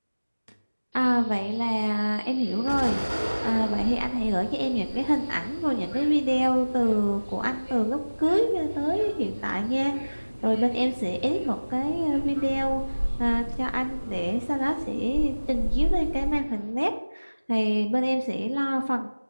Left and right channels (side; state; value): both; inverted; correlation -1.00